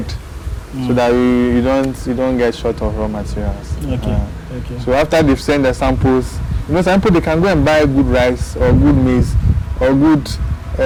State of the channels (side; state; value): both; identical; correlation 1.00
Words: so that you don't get short of raw materials. Okay. So after they've sent the samples, some people they can go and buy good rice or good maize or good